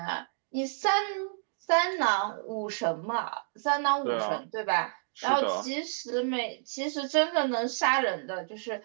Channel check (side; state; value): left; silent; digital silence